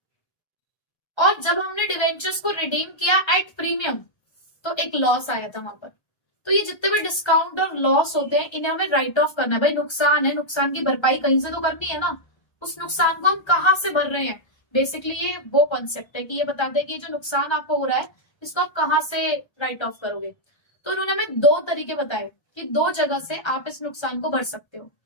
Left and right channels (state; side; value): late; right; 1.3 ms